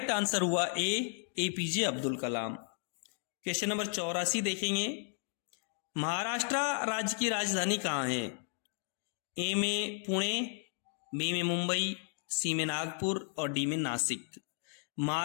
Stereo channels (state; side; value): silent; right; 55 dB below the other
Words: आंसर हुआ ए, APJ Abdul Kalam. Question number 84 देखेंगे। महाराष्ट्र राज्य की राजधानी कहाँ है? ए में पुणे, बी में मुंबई, सी में नागपुर और डी में नासिक।